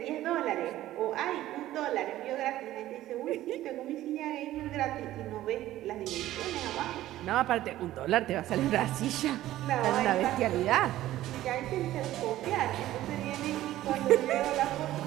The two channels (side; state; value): left; quieter; 14.5 dB